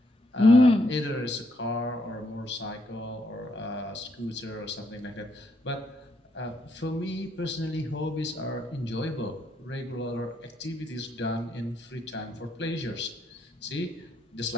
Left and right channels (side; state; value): both; normal; correlation 0.75